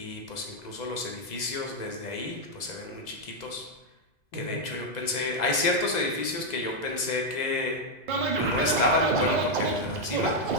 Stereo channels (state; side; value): late; right; 2.0 ms